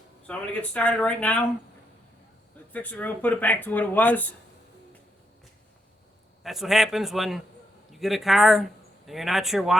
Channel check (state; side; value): normal; both; correlation 0.79